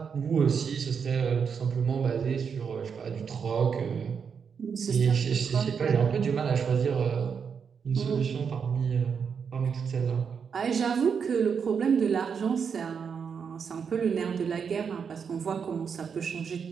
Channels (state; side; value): quieter; left; 6.5 dB